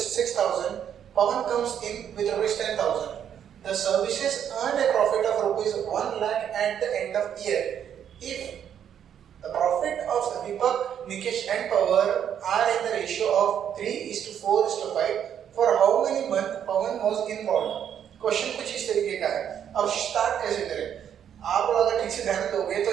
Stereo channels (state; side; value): quieter; left; 9.1 dB